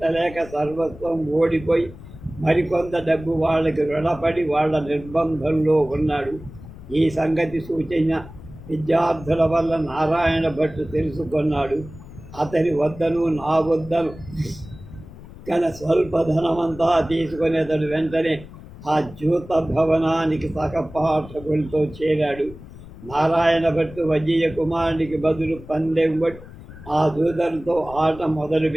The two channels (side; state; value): left; noise; rumble, 17 dB below the sound